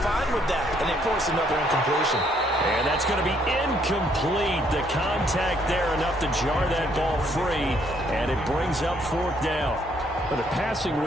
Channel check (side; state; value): both; normal; correlation 0.68